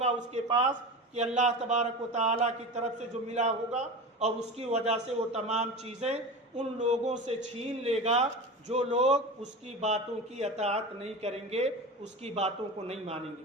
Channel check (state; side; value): normal; both; correlation 0.29